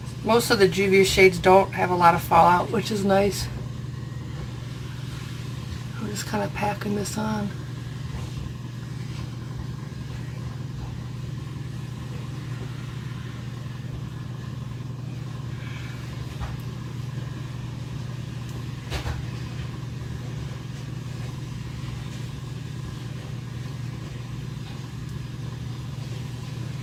Most of the Juvia shades don't have a lot of fallout, which is nice. I'm just kind of packing this on.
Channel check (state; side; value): identical; both; correlation 1.00